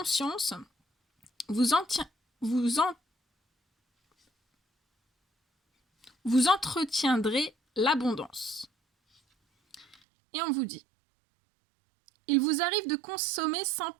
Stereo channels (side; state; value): left; drops out; at 10.0 s